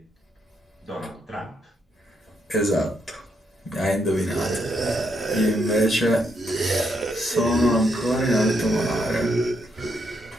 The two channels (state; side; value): normal; both; correlation 0.77